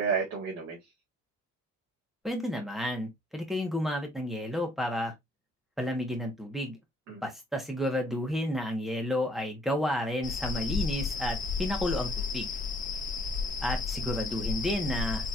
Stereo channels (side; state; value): both; normal; correlation 0.63